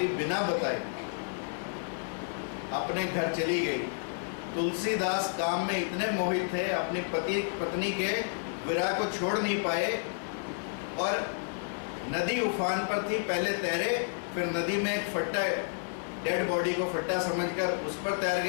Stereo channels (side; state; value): right; silent; digital silence